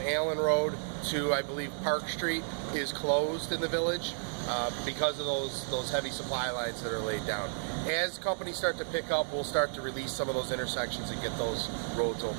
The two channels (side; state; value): left; silent; digital silence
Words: Allen Road to, I believe, Park Street is closed in the village because of those heavy supply lines that are laid down. As companies start to pick up, we'll start to release some of those intersections and get those roads